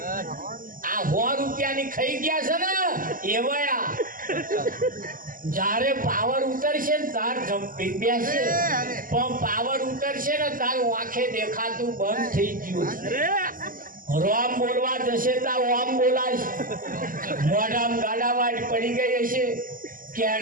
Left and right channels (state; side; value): late; left; 0.41 ms